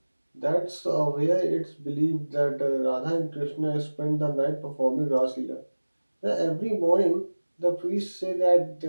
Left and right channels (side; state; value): both; inverted; correlation -1.00